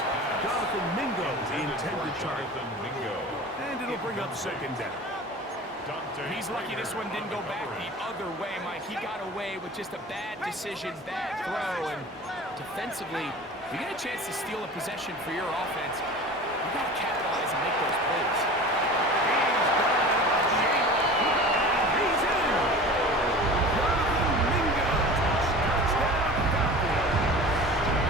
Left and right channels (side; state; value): both; normal; correlation 0.38